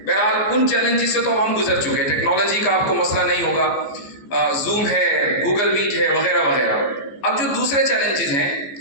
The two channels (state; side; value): late; right; 14 ms